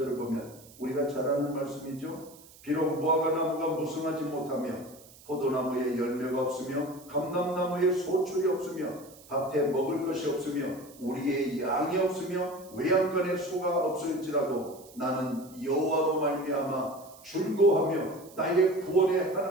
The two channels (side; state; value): right; noise; hiss, 22 dB below the sound